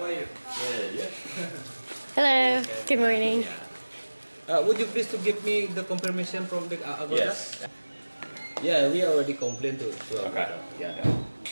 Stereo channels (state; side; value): inverted; both; correlation -1.00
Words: are you? Good, yeah. Hello. Good morning. Would you please to give me the confirmation from the Agoda? Yes. Yeah, we already complained to Agoda. Okay. Yeah.